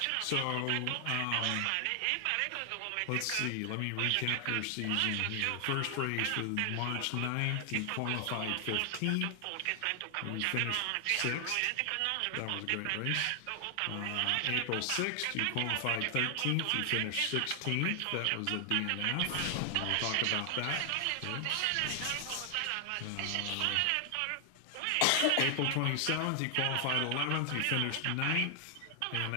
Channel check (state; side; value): different; both; correlation 0.00